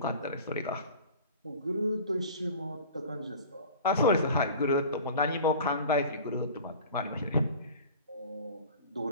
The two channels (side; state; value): both; inverted; correlation -0.40